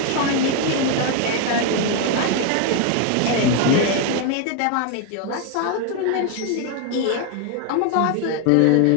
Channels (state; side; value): different; both; correlation 0.01